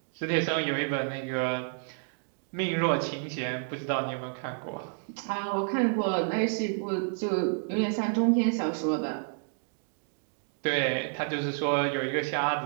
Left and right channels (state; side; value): silent; left; 58 dB below the other